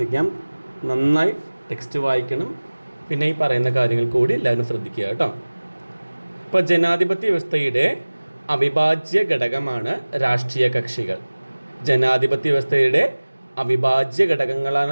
നന്നായി ടെക്സ്റ്റ് വായിക്കണം. പിന്നെ ഈ പറയുന്ന കാര്യങ്ങൾ കൂടി എല്ലാവരും ശ്രദ്ധിക്കുക കേട്ടോ. ഇപ്പോൾ ജനാധിപത്യ വ്യവസ്ഥയുടെ അവിഭാജ്യ ഘടകമാണ് രാഷ്ട്രീയ കക്ഷികൾ. ജനാധിപത്യ വ്യവസ്ഥയുടെ അവിഭാജ്യ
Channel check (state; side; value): inverted; both; correlation -1.00